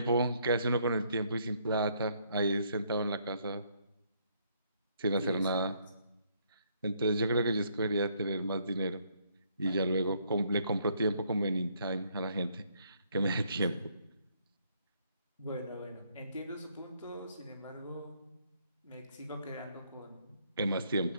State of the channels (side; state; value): both; inverted; correlation -0.69